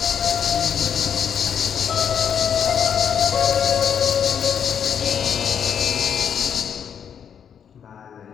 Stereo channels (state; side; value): quieter; right; 8.0 dB